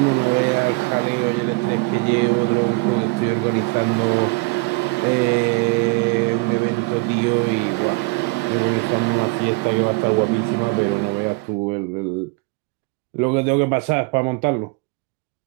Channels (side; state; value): left; quieter; 27.4 dB